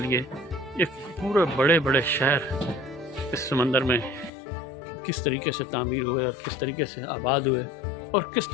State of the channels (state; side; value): drops out; right; at 4.3 s